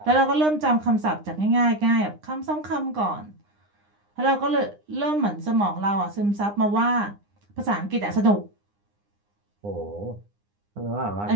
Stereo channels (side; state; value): left; late; 9.8 ms